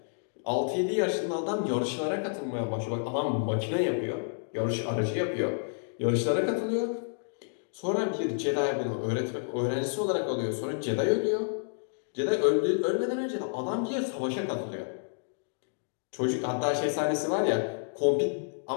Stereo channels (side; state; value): right; silent; digital silence